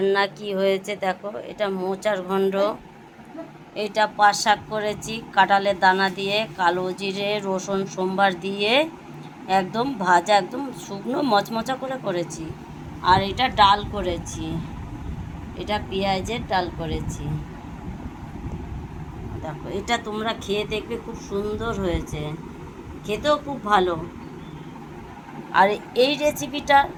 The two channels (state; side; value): identical; both; correlation 1.00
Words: কি হয়েছে দেখো। এটা মোচার ঘণ্ট, এটা পাট শাক করেছি কাঁঠালের দানা দিয়ে, কালো জিরে রসুন সোমবার দিয়ে একদম ভাজা, একদম শুকনো মচমচা করে করেছি। আর এটা ডাল করেছি, এটা পেঁয়াজের ডাল করেছি। দেখো এটা তোমরা খেয়ে দেখবে, খুব সুন্দর হয়েছে, খেতেও খুব ভালো। আর এই রেসিপিটা